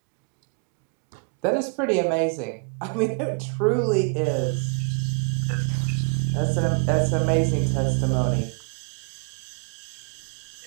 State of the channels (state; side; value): quieter; left; 37.0 dB